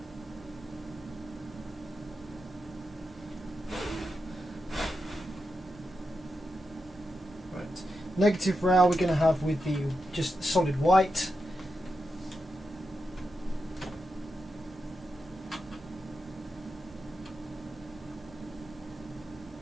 Right. Negative rail we're going to have with the just solid white.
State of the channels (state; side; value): normal; both; correlation 0.87